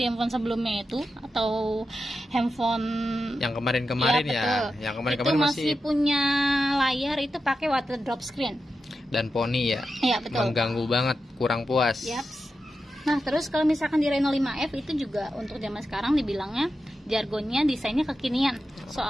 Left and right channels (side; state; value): both; normal; correlation 0.90